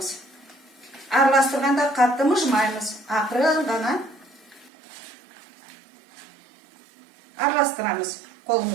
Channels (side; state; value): left; drops out; at 4.7 s